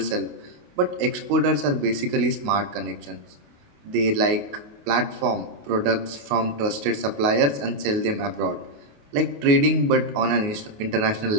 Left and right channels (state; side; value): late; left; 28 ms